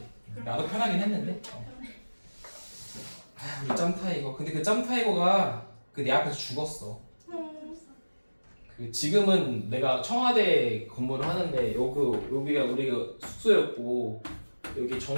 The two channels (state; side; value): inverted; both; correlation -1.00